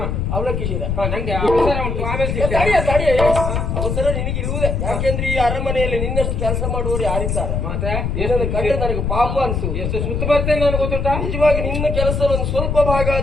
ಅವಳ ಕಿಶಿರ. ನಂಗೆ ಅವಸರ ಉಂಟು, ಆಮೇಲೆ ಅವಸರ ನಿನಗಿರುವುದೇ. ಯಾಕೆಂದ್ರೆ ಈ ಅರಮನೆಯಲ್ಲಿ ನಿನ್ನಷ್ಟು ಕೆಲಸ ಮಾಡುವವರು ಯಾರಿದ್ದಾರೆ? ಮತ್ತೆ ಏನಂದ್ರೆ ಕಂಡ್ರೆ ನನಗೆ ಪಾಪ ಅನ್ಸು. ಎಷ್ಟು ಸುತ್ತ ಬರ್ತೇನೆ ನನಗೆ ಗೊತ್ತುಂಟಾ? ನಿಜವಾಗಿ ನಿನ್ನ ಕೆಲಸ ಒಂದು ಸ್ವಲ್ಪ ಭಾಗ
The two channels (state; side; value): noise; left; rumble, 1 dB below the sound